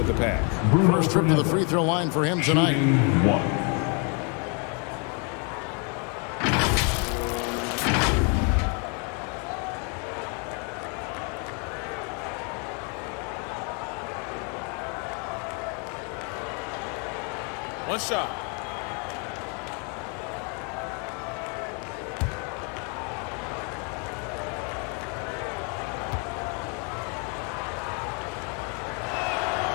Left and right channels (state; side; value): quieter; right; 36.4 dB